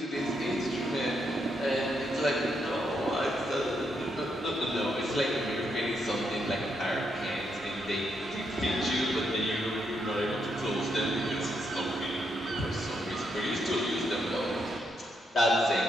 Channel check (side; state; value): both; normal; correlation 0.79